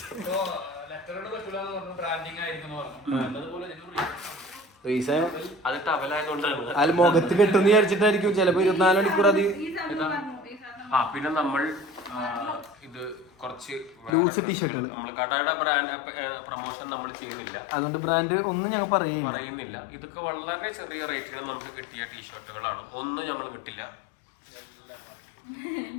അത് ടവലായതുകൊണ്ടാണ്. അതിൽ മുഖത്ത് കെട്ടുന്ന് വിചാരിച്ചിട്ടായിരിക്കും ചിലപ്പോ 24 മണിക്കൂർ അത്. പിന്നെ നമ്മൾ ഇത് കുറച്ച് ലൂസ് ടീഷർട്ടുകൾ നമ്മൾ കടയുടെ ബ്രാൻഡ് പ്രൊമോഷൻ നമ്മൾ ചെയ്യുന്നില്ല, അതുകൊണ്ട് ബ്രാൻഡ് ഒന്നും ഞങ്ങൾ പറയുന്നില്ല. ഇതൊക്കെ വളരെ ചെറിയ റേറ്റിന് നമുക്ക് കിട്ടിയ ടീഷർട്ടുകളാണ്. ഒന്നും ഞങ്ങൾ കിട്ടില്ല.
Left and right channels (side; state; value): right; drops out; at 14.1 s